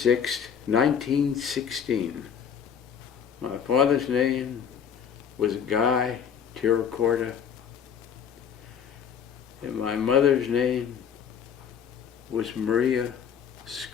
1916. My father's name was Guy Tiracorda, and my mother's name was Maria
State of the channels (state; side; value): quieter; right; 7.7 dB